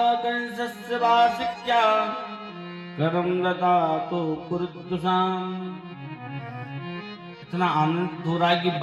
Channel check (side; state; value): both; identical; correlation 1.00